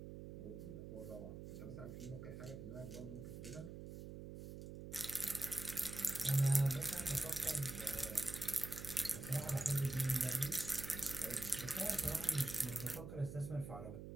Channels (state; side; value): noise; right; hum, 9 dB below the sound